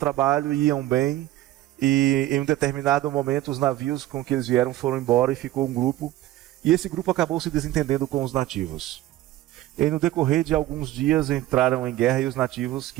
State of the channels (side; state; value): left; quieter; 15.0 dB